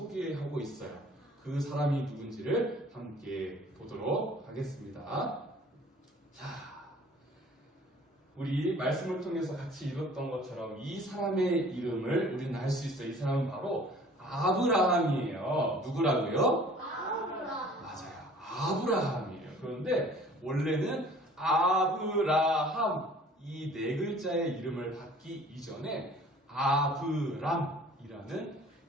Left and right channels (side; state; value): both; normal; correlation 0.51